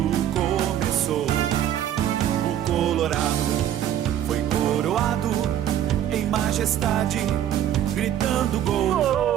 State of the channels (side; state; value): left; quieter; 11.0 dB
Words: começou. O Colorado foi coroado em majestade, gritando